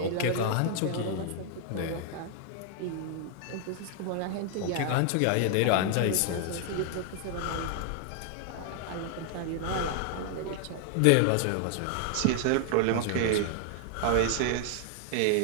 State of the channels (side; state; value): both; different; correlation 0.00